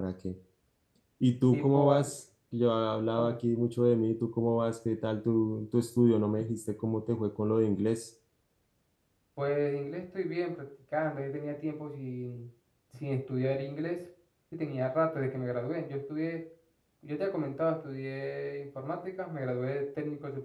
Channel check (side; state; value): both; identical; correlation 1.00